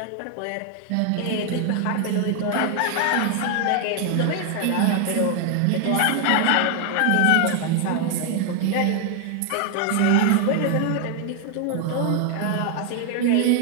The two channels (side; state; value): both; different; correlation 0.00